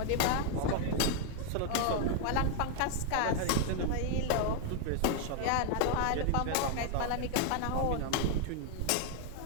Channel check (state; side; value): different; both; correlation 0.00